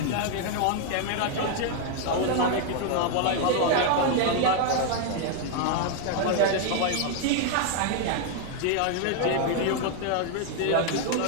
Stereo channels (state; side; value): different; both; correlation 0.00